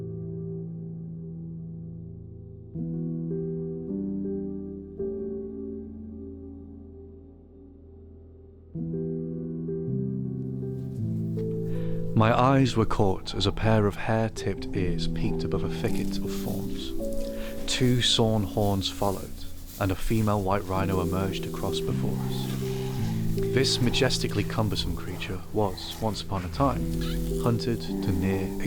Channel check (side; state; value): both; identical; correlation 1.00